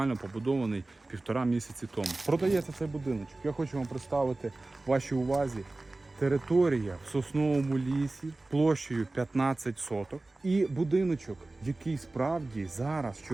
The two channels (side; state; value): left; quieter; 3.0 dB